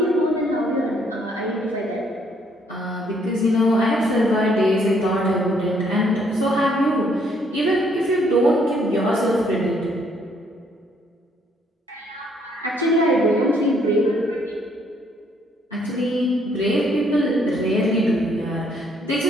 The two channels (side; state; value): both; normal; correlation 0.67